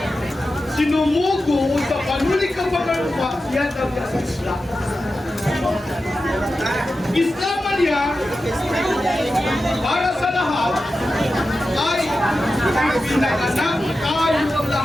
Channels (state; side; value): normal; both; correlation 0.92